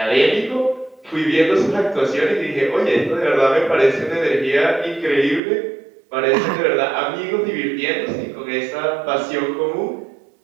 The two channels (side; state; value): left; drops out; at 5.4 s